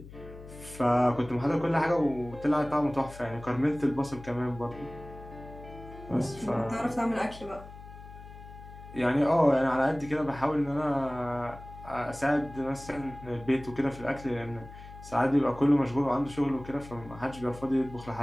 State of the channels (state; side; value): noise; left; hum, 16 dB below the sound